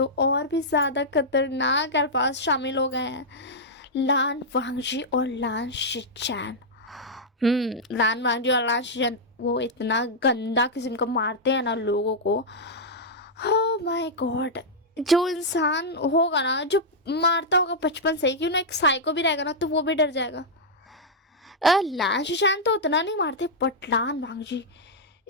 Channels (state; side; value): normal; both; correlation -0.06